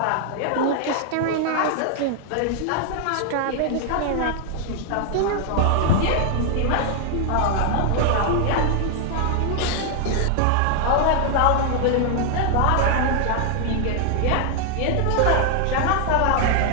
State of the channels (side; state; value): both; different; correlation 0.00